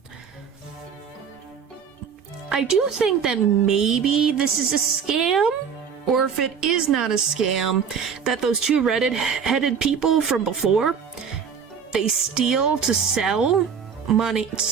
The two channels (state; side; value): quieter; left; 6.9 dB